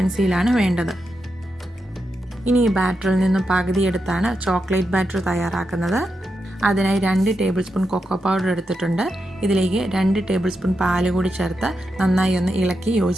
വേണ്ടത്. ഇനി ഈ ബാറ്ററിൽ നിന്നും പകുതി എടുത്താണ് ചോക്ലേറ്റ് ബാറ്റർ തയ്യാറാക്കുന്നത്. അതിനായി 2 ടേബിൾ സ്പൂൺ കൊക്കോ പൗഡർ എടുത്തിട്ടുണ്ട്. ഇതിലേക്ക് 2 ടേബിൾ സ്പൂൺ പാല് കൂടി ചേർത്ത് നന്നായി ഒന്ന് ഇളക്കി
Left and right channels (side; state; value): both; normal; correlation 0.86